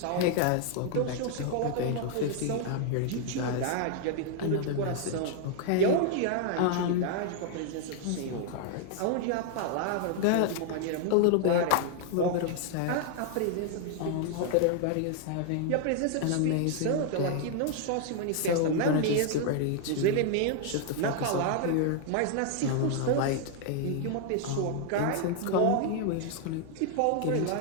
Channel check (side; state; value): both; different; correlation 0.00